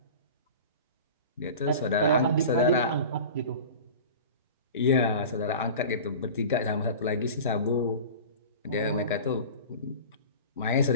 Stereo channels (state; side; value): inverted; both; correlation -0.36